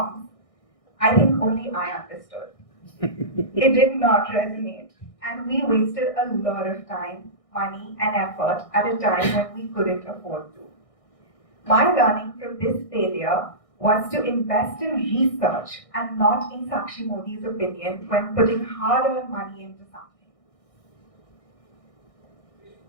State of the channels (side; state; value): right; late; 1.6 ms